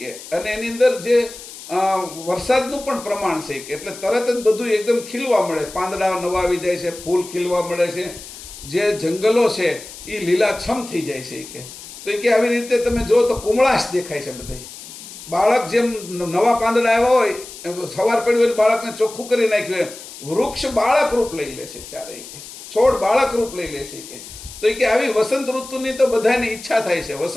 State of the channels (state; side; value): noise; left; hiss, 15 dB below the sound